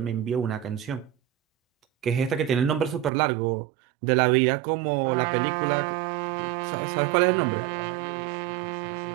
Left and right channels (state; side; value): drops out; left; at 3.1 s